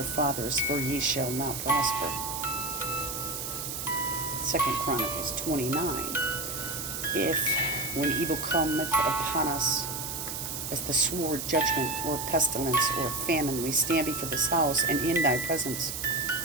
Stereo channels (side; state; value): right; noise; hiss, 5 dB below the sound